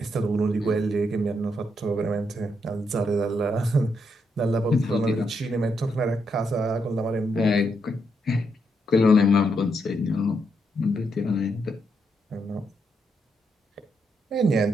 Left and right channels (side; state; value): both; normal; correlation 0.80